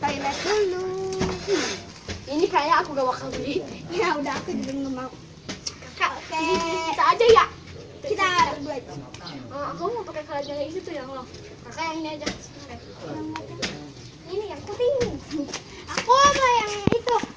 toilet dulu. Ini kayak aku gak bakal beli. Ya udah, aku juga nggak mau. Kak, Oke. kita aja ya. Kita berdua itu. Aku mau pakai keranjang yang itu yang lo. Kakak yang ini aja. Ini yang putih. Aku mau yang itu.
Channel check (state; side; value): identical; both; correlation 1.00